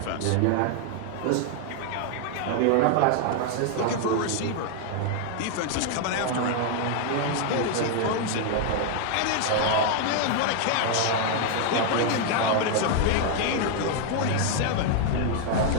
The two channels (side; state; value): both; different; correlation 0.00